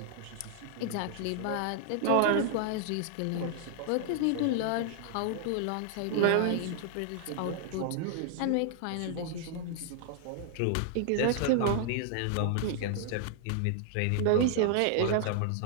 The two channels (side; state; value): both; different; correlation -0.01